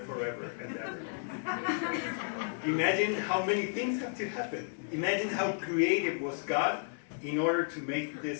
forever and ever. Imagine how many things have to happen. Imagine how creative was God in order to make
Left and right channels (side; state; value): right; silent; 56 dB below the other